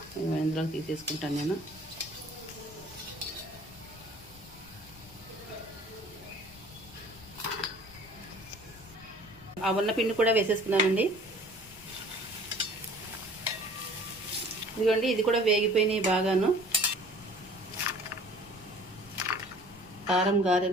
ఇందులో తీసేసుకుంటాను నేను. ఆ ఉన్న పిండి కూడా వేసేసుకున్నానండి. ఇదిగోండి ఇది కూడా వేగిపోయినాయి బాగాను. కారం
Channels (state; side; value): noise; left; rumble, 21 dB below the sound